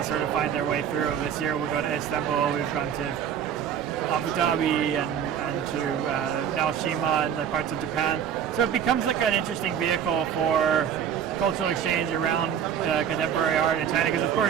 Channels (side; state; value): left; quieter; 8.7 dB